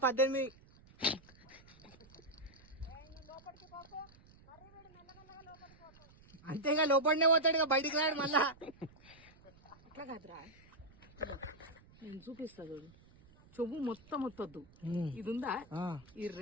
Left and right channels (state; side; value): noise; right; rumble, 25 dB below the sound